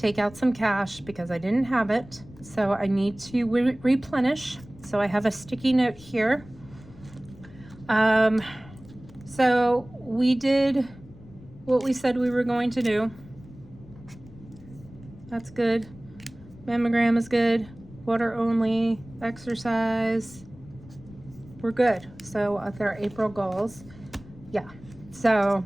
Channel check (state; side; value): noise; left; rumble, 20 dB below the sound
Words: out some cash because I didn't have it. So I need to replenish. So I have a sticky note here. So we did what we said we were going to do. That's good. Mammogram is good. Water only. Exercise. We're good. So with our April goals. Yeah. So